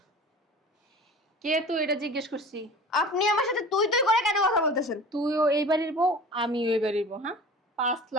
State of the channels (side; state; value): both; normal; correlation 0.39